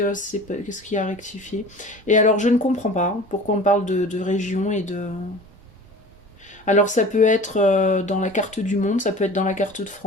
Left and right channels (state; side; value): normal; both; correlation 0.41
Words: y a à rectifier? Et alors je ne comprends pas pourquoi on parle de région et de. Alors ça peut être dans la carte du monde, ça peut être dans la carte de